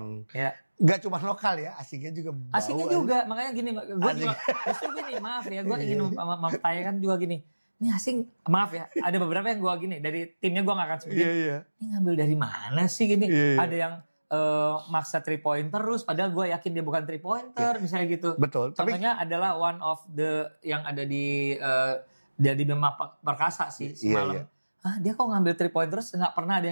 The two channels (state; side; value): inverted; both; correlation -1.00